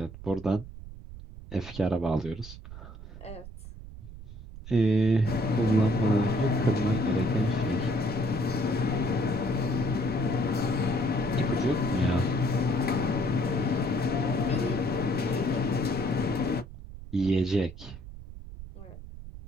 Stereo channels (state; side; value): noise; right; rumble, 13 dB below the sound